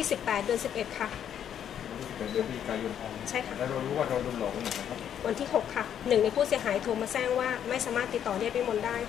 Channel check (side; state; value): right; quieter; 9.4 dB